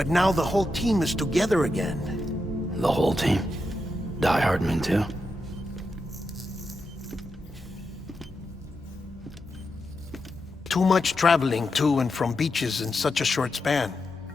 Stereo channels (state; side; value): normal; both; correlation 0.87